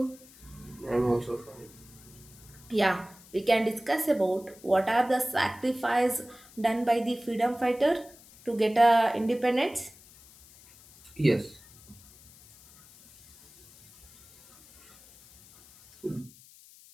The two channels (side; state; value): left; noise; hiss, 23 dB below the sound